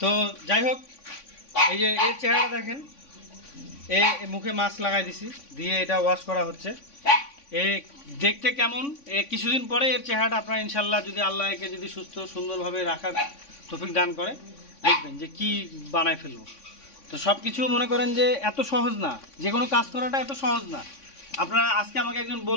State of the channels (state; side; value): late; right; 3.5 ms